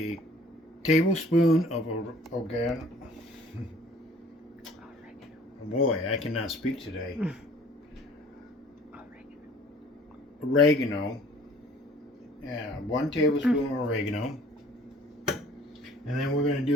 tablespoon of oregano. Boy, I cannot speak today. Oregano. Yeah, 1 tablespoon of oregano. And then we're going to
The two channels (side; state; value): both; normal; correlation 0.53